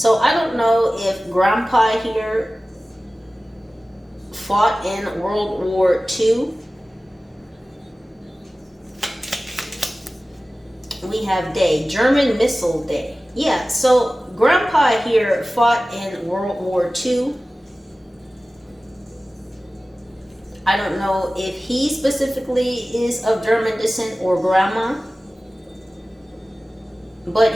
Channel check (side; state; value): both; normal; correlation 0.96